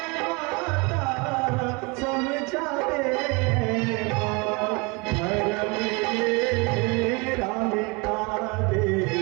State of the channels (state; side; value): quieter; left; 28.7 dB